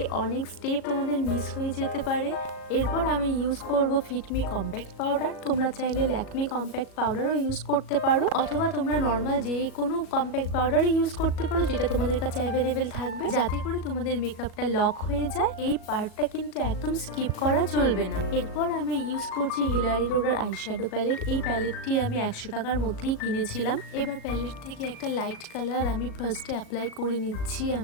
অনেক স্টেপ তোমাদের মিস হয়ে যেতে পারে। এরপর আমি ইউজ করব ফিটমি কম্প্যাক্ট পাউডার। তোমরা চাইলে ল্যাকমি কম্প্যাক্ট পাউডারও ইউজ করতে পারো, অথবা তোমরা নর্মাল যে কোনো কম্প্যাক্ট পাউডারই ইউজ করতে পারো যেটা তোমাদের কাছে অ্যাভেলেবেল থাকবে, যাতে করে তোমাদের মেকআপটা লক হয়ে যায়। এই পার্টটা কিন্তু একদম স্কিপ করা চলবে না। এরপর আমি ইউজ করছি হিলারি রোডার আইশ্যাডো প্যালেট। এই প্যালেটটি আমি 100 টাকার মধ্যেই কিনেছিলাম। এবার প্যালেট থেকে একটা লাইট কালার আমি ফার্স্টে অ্যাপ্লাই করে নিচ্ছি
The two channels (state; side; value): late; right; 38 ms